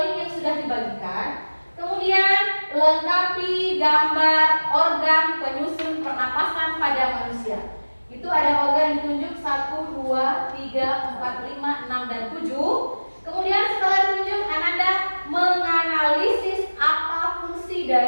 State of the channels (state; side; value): inverted; both; correlation -1.00